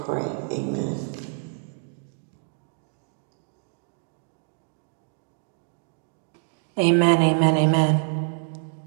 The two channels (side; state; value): left; silent; 61 dB below the other